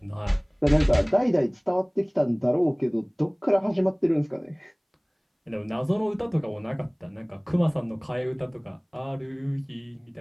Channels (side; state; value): both; identical; correlation 1.00